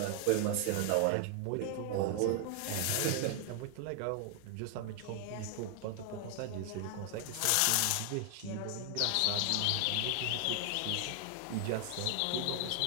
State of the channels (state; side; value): different; both; correlation 0.00